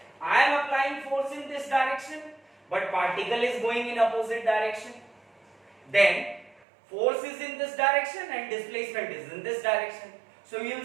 I am applying force in this direction, but particle is going in opposite direction. Then force is in this direction and displacement is in this direction. So you will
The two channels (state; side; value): drops out; left; at 6.6 s